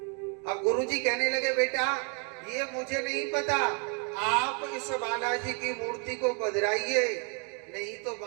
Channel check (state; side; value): quieter; left; 38.0 dB